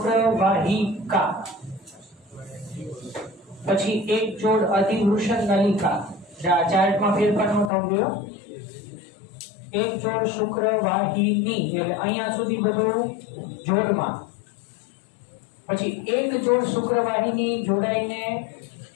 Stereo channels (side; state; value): right; drops out; at 7.7 s